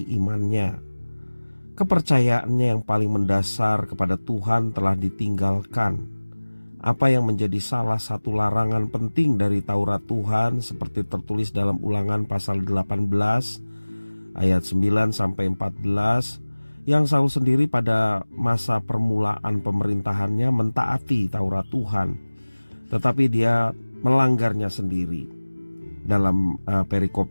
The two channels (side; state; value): both; inverted; correlation -1.00